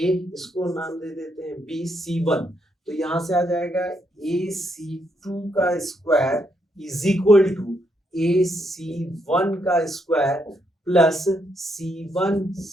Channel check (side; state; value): both; normal; correlation 0.77